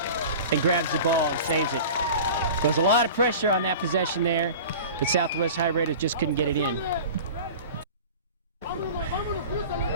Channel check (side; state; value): both; inverted; correlation -0.37